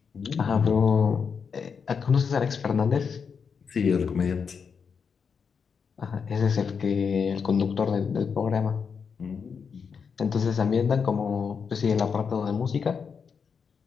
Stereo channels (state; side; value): quieter; right; 6.1 dB